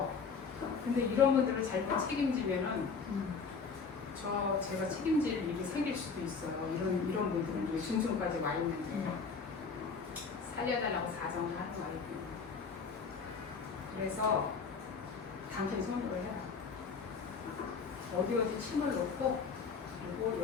근데 이런 분들을 잘못 책임지면은 제가 책임질 일이 생길 수도 있어요. 이런 분들은 중증까지 와 있는데 살려달라고 사정을 하는 거예요. 그래서 당신 손으로 해라. 어디 침을 놓고 그리고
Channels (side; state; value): right; quieter; 5.3 dB